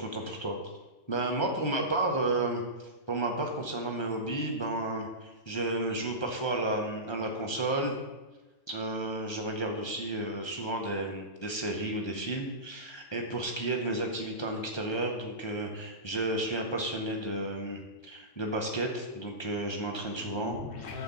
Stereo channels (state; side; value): late; right; 1.3 ms